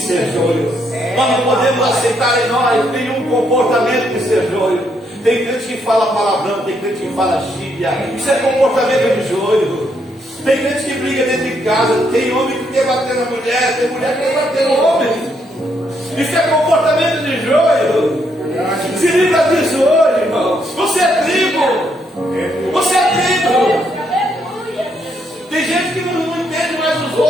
joio. Nós não podemos aceitar em nós nenhum comportamento de ser joio. Tem crente que fala palavrão, tem crente que fala gíria. Isso é comportamento de joio. Tem crente que briga dentro de casa, tem homem que quer bater na mulher, tem mulher que quer bater no homem. Isso é comportamento de joio. Se livra disso hoje, irmão. Você é trigo. Você é trigo. Tem gente que não entende mais os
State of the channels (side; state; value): both; normal; correlation 0.75